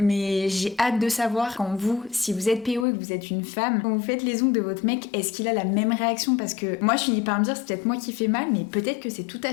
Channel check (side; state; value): right; drops out; at 2.9 s